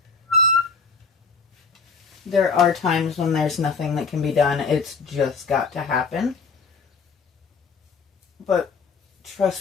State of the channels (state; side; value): quieter; right; 4.9 dB